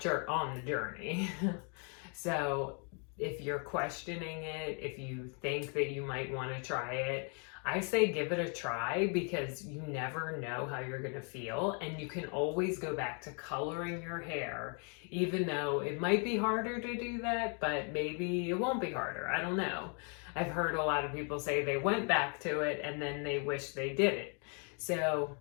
So if you're questioning it, if you think that you might want to try it, I say give it a try, because you never know how you're going to feel, and you can always go back to coloring your hair, even though it might be harder to do that, but maybe it won't be harder. I don't know. I've heard a lot of people say they went back to it and then they wish they did it. So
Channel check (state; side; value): quieter; right; 39.0 dB